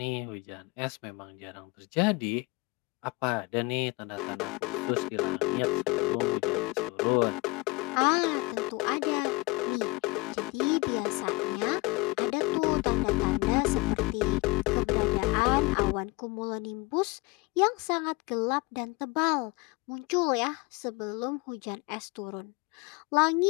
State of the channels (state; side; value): quieter; right; 24.8 dB